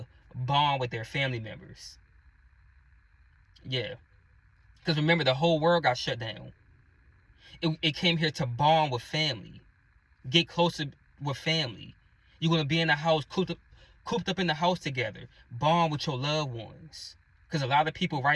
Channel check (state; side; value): identical; both; correlation 1.00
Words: bond with their family members. Yeah. Because remember, the whole world got shut down. It came here to bond with family. Get closer with family. You're going to be in the house, cooped up in the house together. Bond with your loved ones. Because a lot of people